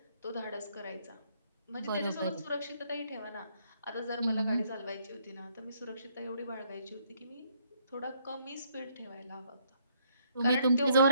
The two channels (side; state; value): both; inverted; correlation -0.69